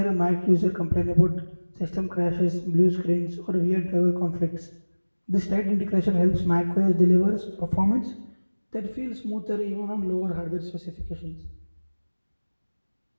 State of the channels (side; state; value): both; inverted; correlation -1.00